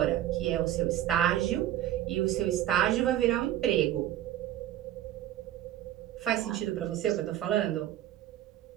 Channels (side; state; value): left; quieter; 12.6 dB